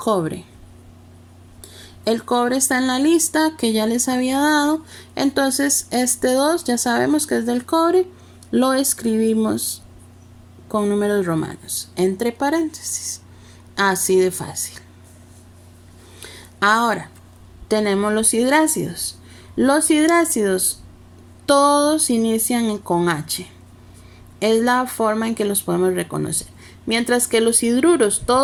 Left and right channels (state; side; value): identical; both; correlation 1.00